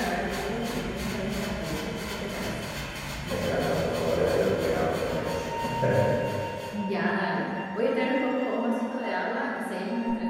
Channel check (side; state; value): both; identical; correlation 1.00